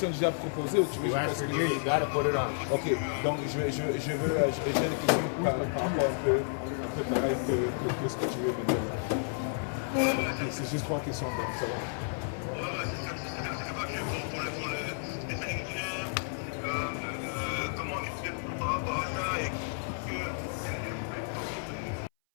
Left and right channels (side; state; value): right; silent; 57 dB below the other